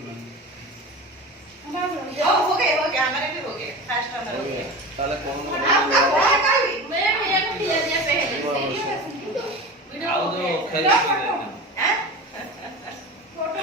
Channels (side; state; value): both; normal; correlation 0.31